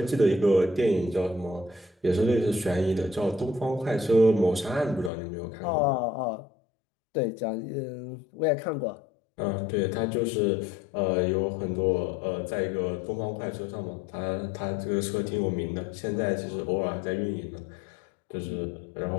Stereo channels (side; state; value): right; drops out; at 5.1 s